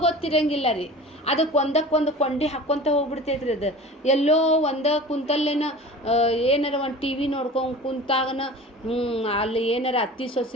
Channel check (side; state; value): both; normal; correlation 0.38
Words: ಗೊತ್ತಿರಂಗಿಲ್ಲ ರೀ. ಅದಕ್ಕೆ ಒಂದಕ್ಕೊಂದು ಕೊಂಡಿ ಹಾಕ್ಕೊತ ಹೋಗ್ಬಿಡ್ತೈತ್ರಿ. ಅದು ಎಲ್ಲೋ ಒಂದ ಕುಂತಲ್ಲೇನ ಏನಾರ ಒಂದು ಟಿ ವಿ ನೋಡ್ಕೊಂಡು ಕುಂತಾಗನ ಅಲ್ಲಿ ಏನಾರ ಅತ್ತಿ